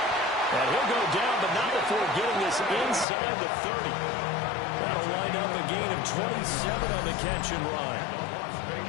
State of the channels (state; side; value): drops out; right; at 3.1 s